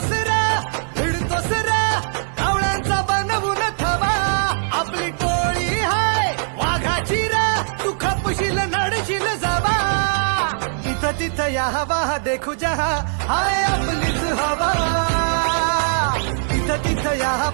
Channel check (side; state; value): left; silent; digital silence